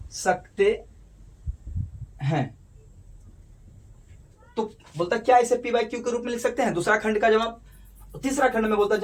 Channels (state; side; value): identical; both; correlation 1.00